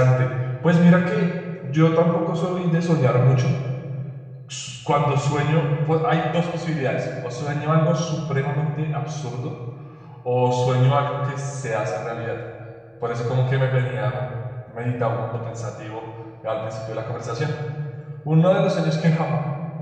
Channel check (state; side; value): identical; both; correlation 1.00